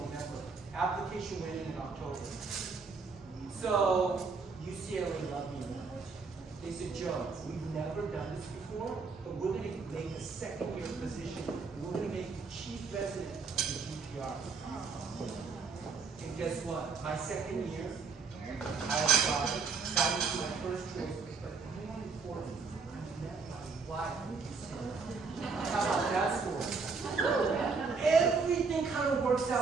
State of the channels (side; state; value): left; quieter; 4.7 dB